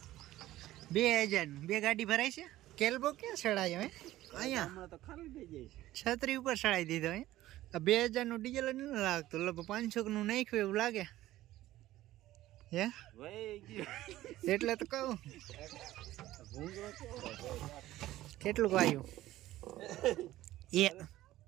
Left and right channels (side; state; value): left; quieter; 15.3 dB